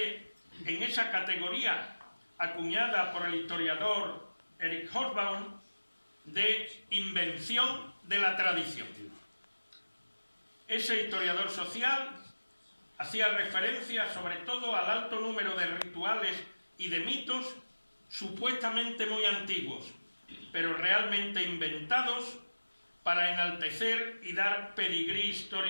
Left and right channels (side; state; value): both; inverted; correlation -1.00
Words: en esa categoría acuñada por el historiador Eric Hobsbawm de invención de la tradición. Ese historiador social hacía referencia sobre todo al alto número de rituales y de mitos supuestamente muy antiguos, pero realmente inventados para enaltecer y dar pedigrí